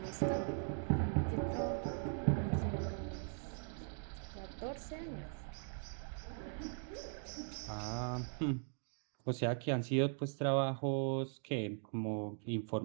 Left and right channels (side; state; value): left; silent; 51 dB below the other